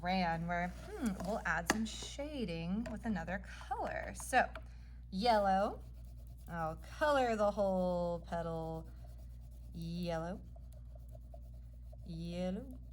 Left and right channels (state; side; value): identical; both; correlation 1.00